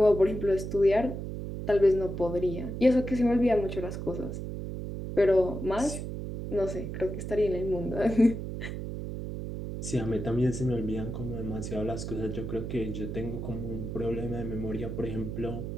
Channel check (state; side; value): noise; right; hum, 6 dB below the sound